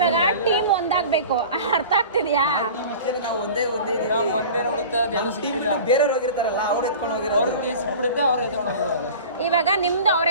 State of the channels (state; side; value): inverted; both; correlation -0.38